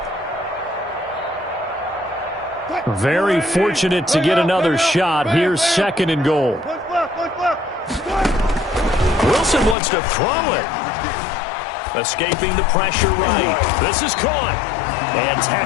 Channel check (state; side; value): drops out; right; at 9.8 s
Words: Very fortunate to get another shot. Here's 2nd and goal. Wilson wants to throw it. Escaping the pressure right. This is caught. And